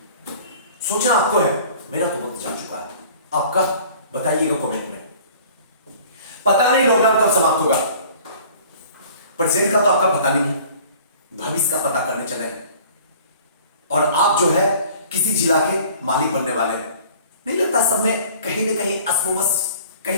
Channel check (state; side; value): inverted; both; correlation -0.49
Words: सोचना आपको है, मेरा तो वक्त जा चुका है। आपका बताइएगा कमेंट में। पता नहीं लॉकडाउन कब समाप्त होगा, प्रेजेंट का तो आपका पता नहीं, भविष्य का पता करने चले हैं। और आप जो है किसी जिला के मालिक बनने वाले हैं। नहीं लगता सब में कहीं ना कहीं असमंजस,